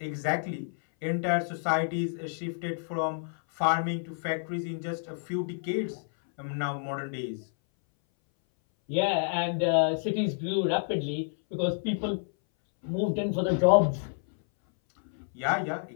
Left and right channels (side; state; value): right; silent; 58 dB below the other